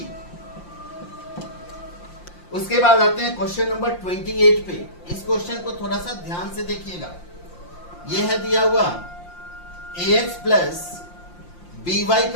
उसके बाद आते हैं क्वेश्चन नंबर 28 पे। इस क्वेश्चन को थोड़ा सा ध्यान से देखिएगा। यह है दिया हुआ ax प्लस बी वाई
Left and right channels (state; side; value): late; right; 5.7 ms